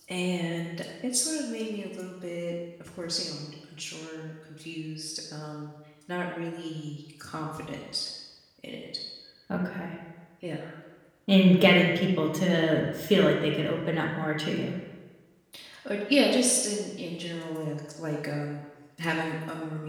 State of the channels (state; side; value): identical; both; correlation 1.00